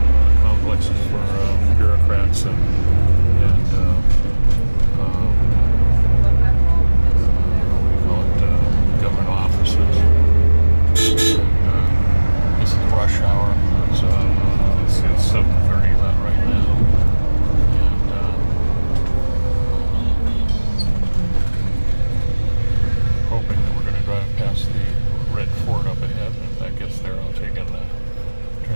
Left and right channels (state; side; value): inverted; both; correlation -1.00